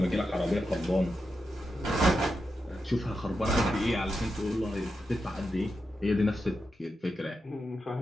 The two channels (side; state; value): both; normal; correlation 0.88